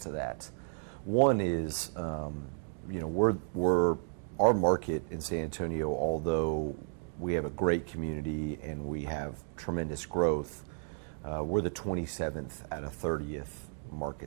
that. One is, we're our market in San Antonio, although we have a great community and we have tremendous growth, we're the 27th out of 30th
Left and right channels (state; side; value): silent; left; digital silence